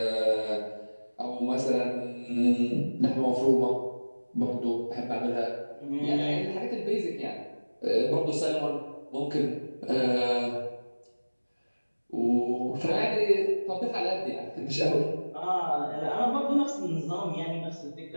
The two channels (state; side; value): inverted; both; correlation -1.00